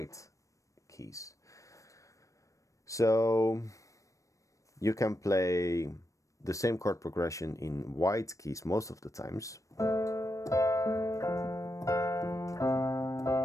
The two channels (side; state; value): right; late; 0.16 ms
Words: keys. So you can play the same chord progression in white keys most of the times.